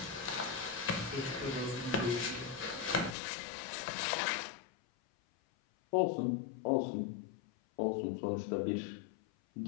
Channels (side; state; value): right; drops out; at 3.2 s